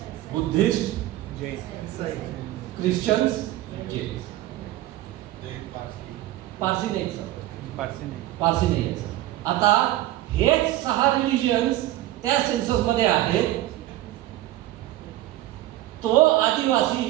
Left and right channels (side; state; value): left; quieter; 15.4 dB